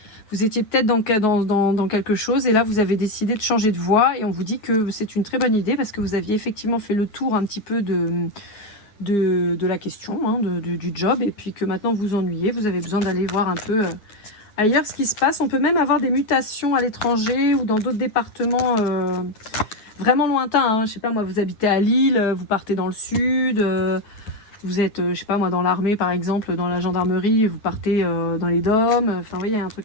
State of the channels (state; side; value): late; right; 9.3 ms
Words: Vous étiez peut-être dans quelque chose et là vous avez décidé de changer de voie et on vous dit que c'est une très bonne idée parce que vous aviez effectivement fait le tour un petit peu de la question, hein, du job et puis que maintenant vous vous ennuyez. Vous avez besoin d'aller voir un peu ailleurs ce qui se passe. On peut même avoir des mutations à l'étranger ou dans d'autres départements vraiment lointain, hein. Je sais pas moi, vous habitez à Lille, vous partez dans le sud, vous êtes, je sais pas moi, dans l'armée par exemple, dans la gendarmerie, vous partez dans les DOM, enfin vous voyez, il y a un